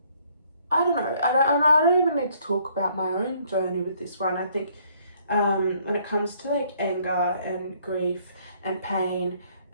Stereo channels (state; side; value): inverted; both; correlation -0.64